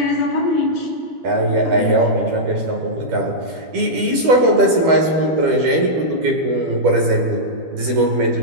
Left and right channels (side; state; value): left; late; 12 ms